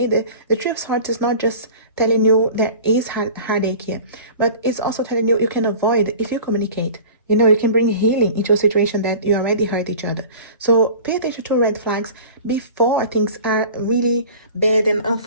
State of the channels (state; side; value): inverted; both; correlation -0.40